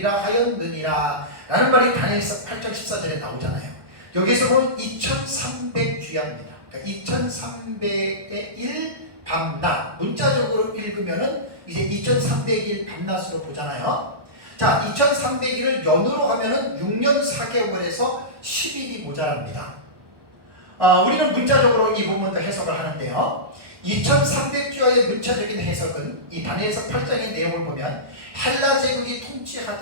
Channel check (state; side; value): late; left; 1.2 ms